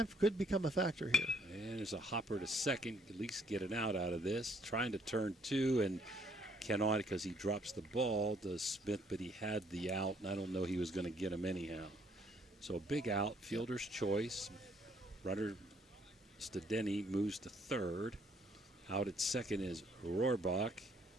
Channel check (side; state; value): both; normal; correlation 0.66